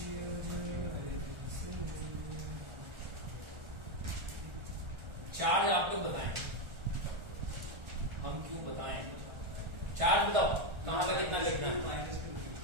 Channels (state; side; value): late; left; 1.4 ms